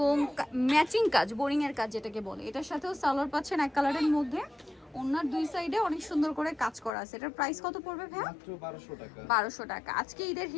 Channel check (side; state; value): right; drops out; at 6.9 s